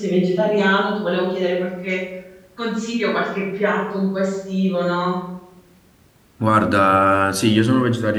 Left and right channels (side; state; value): both; identical; correlation 1.00